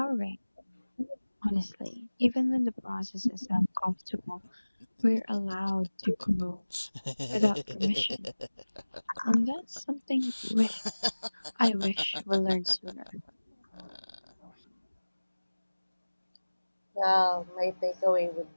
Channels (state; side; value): inverted; both; correlation -1.00